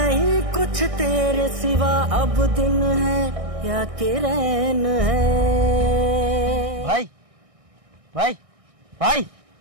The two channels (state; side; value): late; left; 1.6 ms